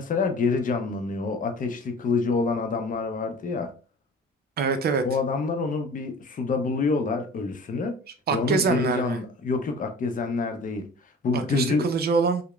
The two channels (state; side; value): normal; both; correlation 0.43